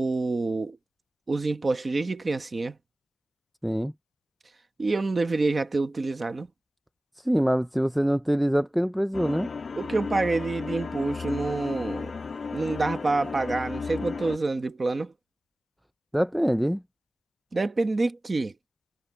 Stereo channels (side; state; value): both; normal; correlation 0.97